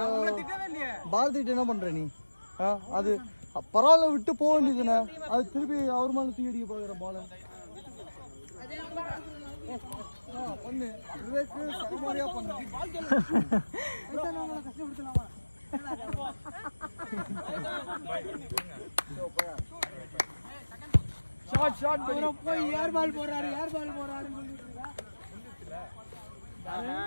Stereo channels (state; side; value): inverted; both; correlation -1.00